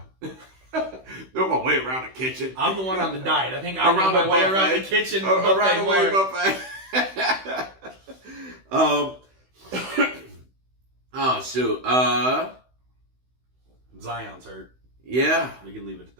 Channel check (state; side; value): late; left; 16 ms